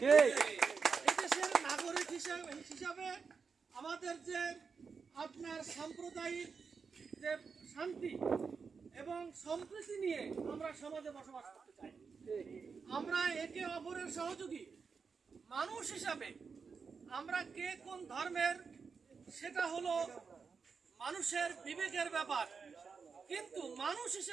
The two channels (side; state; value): left; quieter; 5.4 dB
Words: এদেশের নাগরিক হিসাবে আমাদের যে আপনার সাম্প্রদায়িক যে শান্তি এবং সম্প্রীতি নিয়ে আমরা সমাজে বসবাস করতে চাই। আমরা একে অপরের সহযোগী মানুষ হিসাবে, আমরা কে কোন ধর্মের সেটা হলো মানুষের বিবেকের ব্যাপার, কিন্তু মানুষ